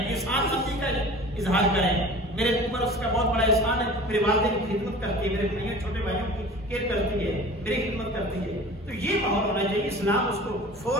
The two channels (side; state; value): both; normal; correlation 0.41